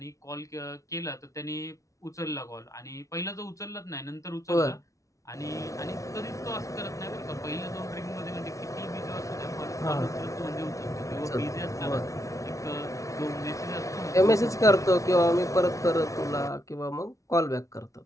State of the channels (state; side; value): late; right; 0.15 ms